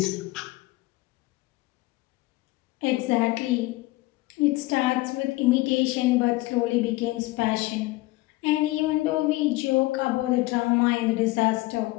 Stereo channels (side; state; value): right; quieter; 20.0 dB